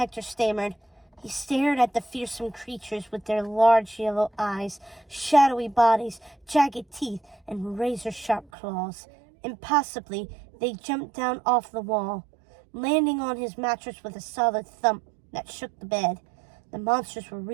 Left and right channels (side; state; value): left; drops out; at 8.5 s